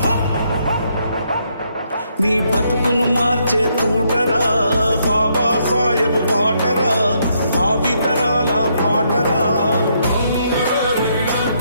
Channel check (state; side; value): inverted; both; correlation -0.74